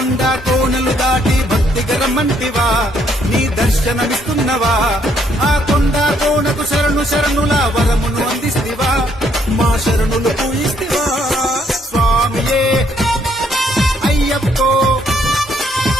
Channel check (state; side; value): normal; both; correlation 0.69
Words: కోనలు దాటి భక్తిగా రమ్మంటివా నీ దర్శనమిస్తున్నవా ఆ కొండ కోనకు శరణు శరణుల వరమును అందిస్తివా మా శరణులు పూయిస్తివా స్వామియే అయ్యప్పో